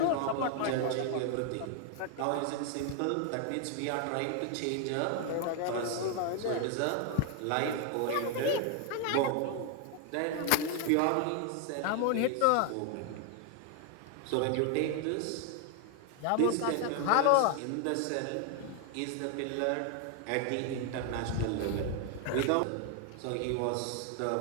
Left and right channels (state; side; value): different; both; correlation 0.00